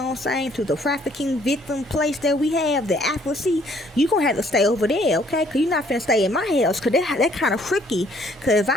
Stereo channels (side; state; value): both; normal; correlation 0.63